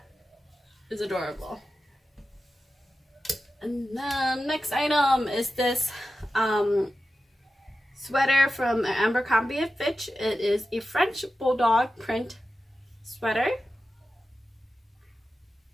is adorable. And then next item is this sweater from Abercrombie & Fitch. It is a French bulldog print sweater.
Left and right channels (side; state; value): both; normal; correlation 0.92